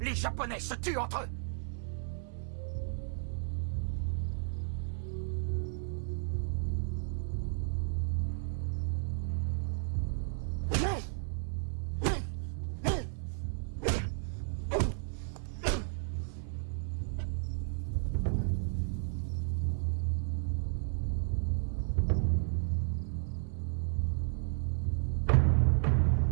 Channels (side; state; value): left; silent; 55 dB below the other